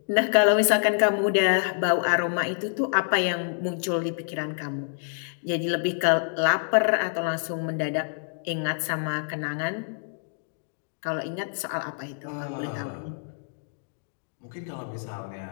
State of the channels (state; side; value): silent; right; digital silence